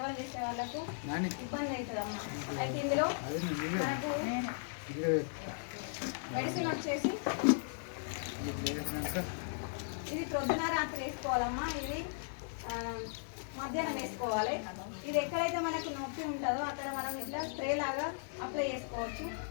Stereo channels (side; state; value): right; silent; digital silence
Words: చేసే వాళ్ళకు ఇబ్బంది అవుతుంది అమ్మ. అయితే ఇందులో మనకు మెడిసిన్ వచ్చేసి ఇది ప్రొద్దున రాత్రి వేసుకోవాలమ్మా. ఇది మధ్యాహ్నం వేసుకోవాలి. ఇది ఎక్కడైతే మనకు నొప్పి ఉంటుందో అక్కడ మనం ఇట్లా స్ప్రే లాగా అప్లై చేసుకోవచ్చు.